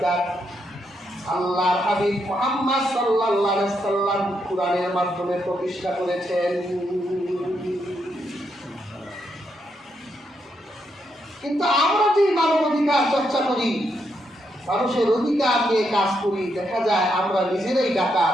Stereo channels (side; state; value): both; normal; correlation 0.80